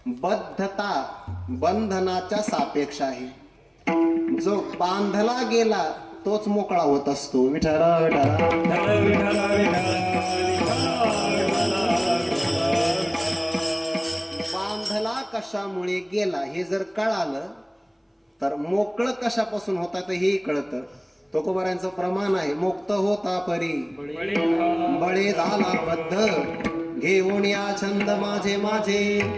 बद्धता बंधनाच्या सापेक्ष आहे. जो बांधला गेला तोच मोकळा होत असतो. विठरा विठरा बांधला कशामुळे गेला हे जर कळालं तर मोकळं कशापासून होता तर हेही कळतं. तुकोबारांचं प्रमाण आहे, मुक्त होता परी बळे झाला बद्ध घेऊन या छंद माझे माझे.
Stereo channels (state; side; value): identical; both; correlation 1.00